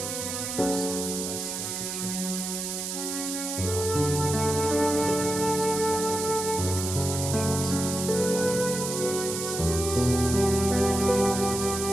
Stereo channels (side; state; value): right; noise; hiss, 4 dB below the sound